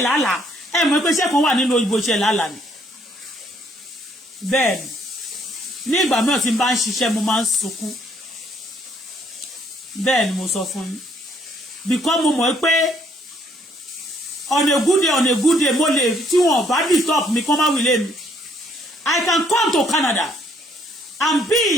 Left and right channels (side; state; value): both; normal; correlation 0.66